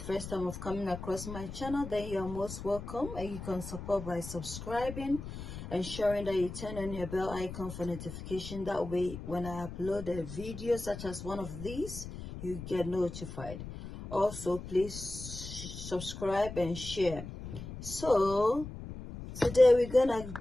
time of coming across my channel, then you're most welcome, and you can support by subscribing, ensuring that you turn on your bell icon for notification. That way, when I upload a video such as one of these, you get notified. Also, please subscribe and share. So today we're gonna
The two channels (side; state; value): left; noise; rumble, 10 dB below the sound